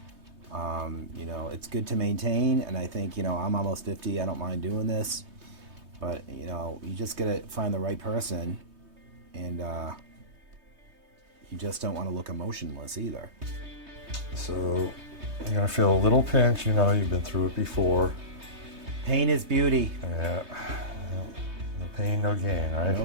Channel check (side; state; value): left; late; 3.2 ms